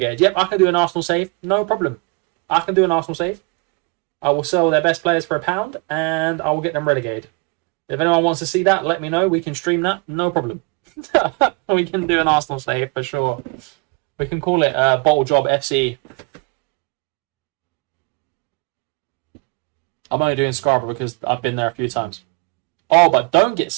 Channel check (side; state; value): left; quieter; 30.0 dB